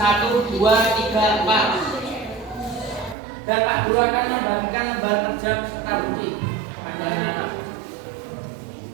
2, 3, 4. Dan Pak Guru akan membagikan lembar kerja serta bukti pada anak-anak.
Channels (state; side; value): drops out; left; at 3.2 s